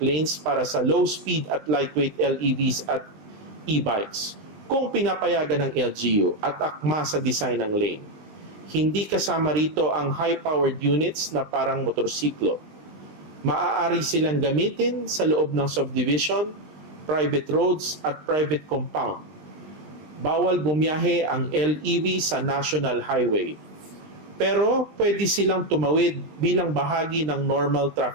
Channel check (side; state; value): left; late; 20 ms